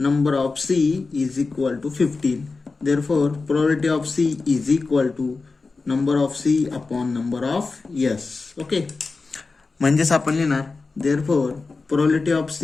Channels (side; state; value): right; quieter; 4.0 dB